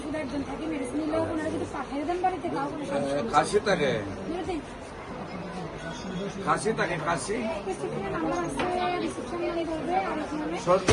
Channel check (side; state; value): both; identical; correlation 1.00